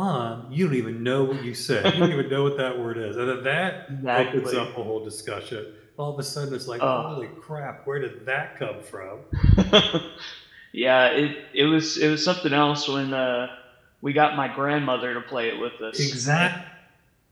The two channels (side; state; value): both; identical; correlation 1.00